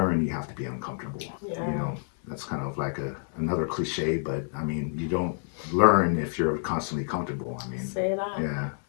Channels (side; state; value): right; silent; 55 dB below the other